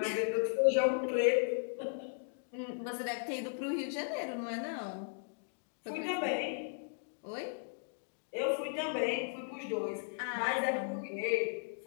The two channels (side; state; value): right; silent; digital silence